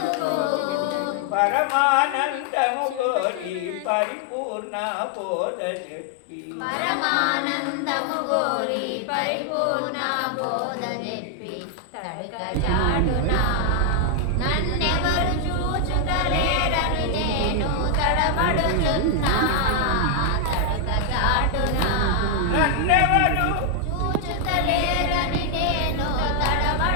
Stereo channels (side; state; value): both; different; correlation 0.00